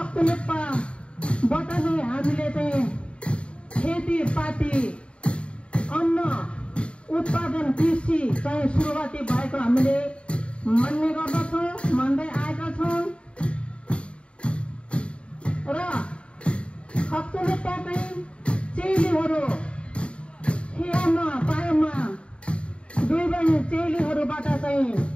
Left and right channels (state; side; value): late; right; 0.058 ms